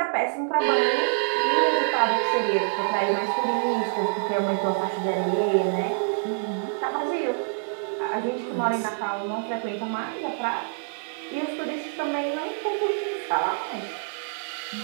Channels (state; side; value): silent; left; digital silence